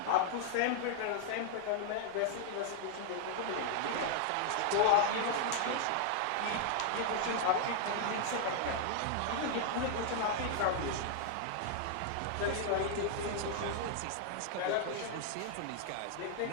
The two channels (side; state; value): both; different; correlation -0.01